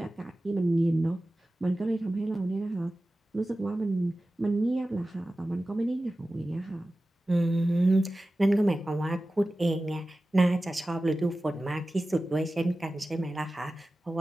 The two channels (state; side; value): normal; both; correlation 0.95